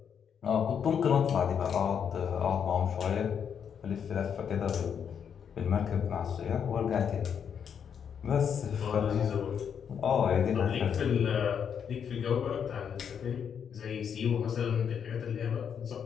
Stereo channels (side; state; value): right; quieter; 7.7 dB